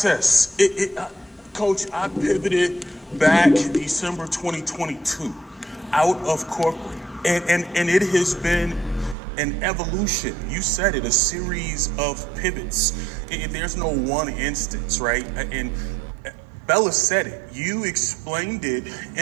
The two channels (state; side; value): drops out; left; at 9.2 s